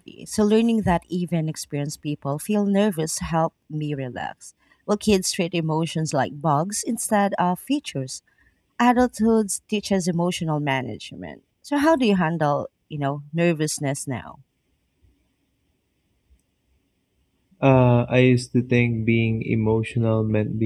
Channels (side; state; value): both; identical; correlation 1.00